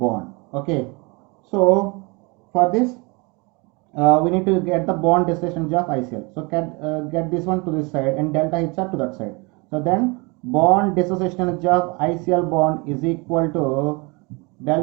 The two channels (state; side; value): quieter; left; 28.4 dB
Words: Okay, so for this we need to get the bond dissociation energy of ICl. So get this one to this side and delta HR to that side. So then bond dissociation energy of ICl bond is equal to